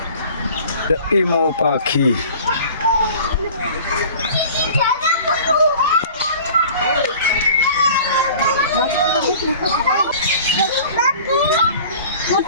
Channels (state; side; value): inverted; both; correlation -0.44